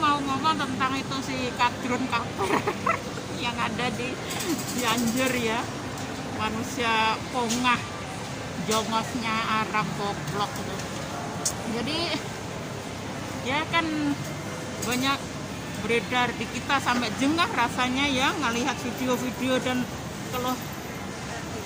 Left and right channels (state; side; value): identical; both; correlation 1.00